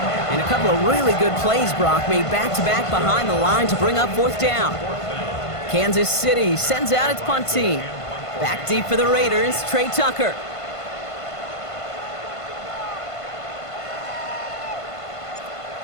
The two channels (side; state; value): right; late; 1.5 ms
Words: And a couple of really good plays, Brock, made back-to-back behind the line to bring up 4th down. Kansas City sends out its punt team. Back deep for the Raiders, Trey Tucker.